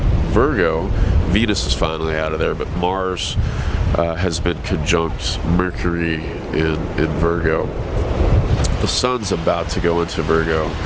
Virgo. Venus is finally out of there, but Mars has been conjunct Mercury in Virgo. The Sun's about to go into Virgo,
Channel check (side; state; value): both; identical; correlation 1.00